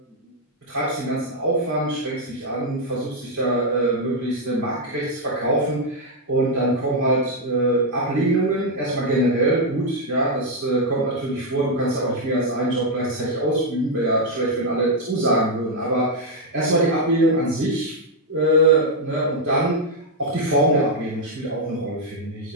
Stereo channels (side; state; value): both; normal; correlation 0.00